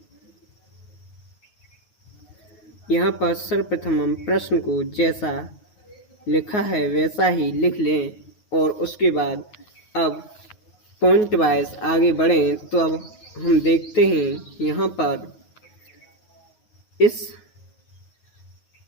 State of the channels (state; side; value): late; right; 9.5 ms